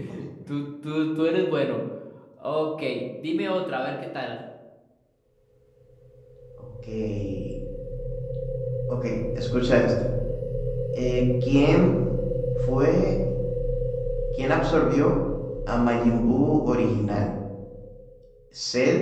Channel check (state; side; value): identical; both; correlation 1.00